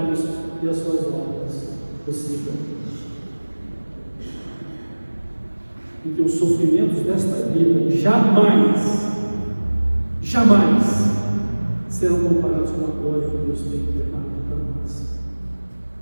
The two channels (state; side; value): inverted; both; correlation -1.00